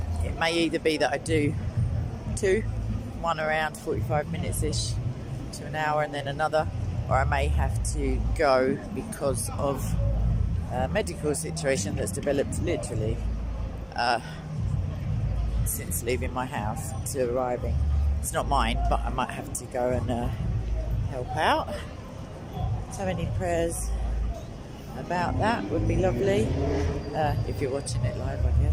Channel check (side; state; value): both; identical; correlation 1.00